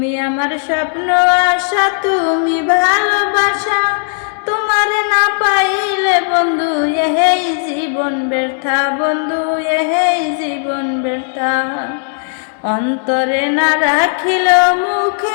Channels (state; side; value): silent; right; digital silence